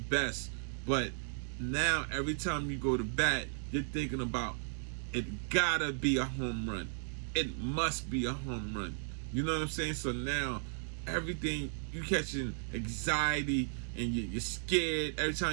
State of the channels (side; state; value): left; silent; digital silence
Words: But now every time you go to bat, you're thinking about, it gotta be a home run. It must be a home run. You know what I'm saying? So now everything, you catching anxiety, and you're scared. Every